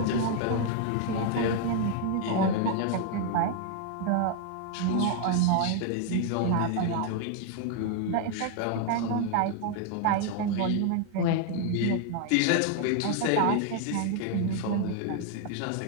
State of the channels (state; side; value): different; both; correlation 0.00